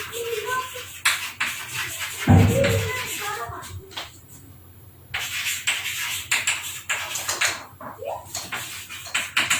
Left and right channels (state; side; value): identical; both; correlation 1.00